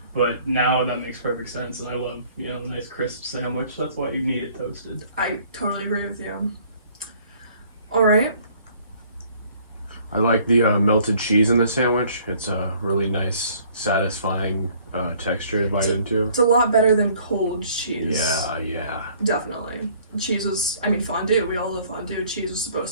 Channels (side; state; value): both; inverted; correlation -0.58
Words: But now that makes perfect sense, and I love, a nice crisp sandwich. That's why you need it toasted. I totally agree with you. All right. I like the melted cheese in the sandwich. It's a really nice, satisfying texture to bite into. It's a lot better than cold cheese. Yeah. Definitely. Cheese was, fondue. We all love fondue. Cheese was